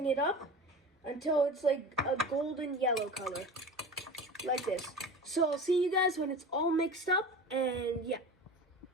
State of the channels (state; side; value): normal; both; correlation 0.34